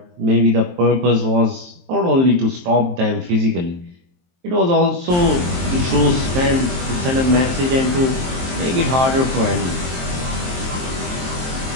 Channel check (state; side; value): late; left; 23 ms